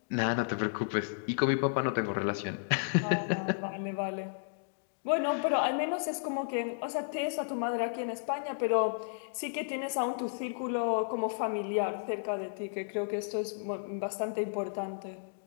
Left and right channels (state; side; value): silent; right; digital silence